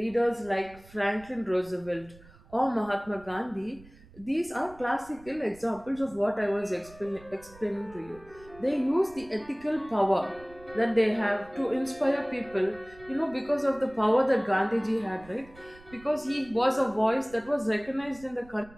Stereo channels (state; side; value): noise; right; rumble, 23 dB below the sound